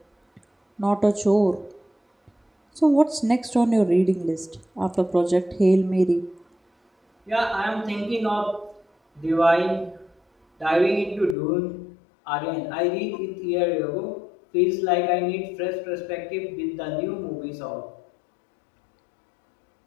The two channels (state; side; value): drops out; right; at 11.4 s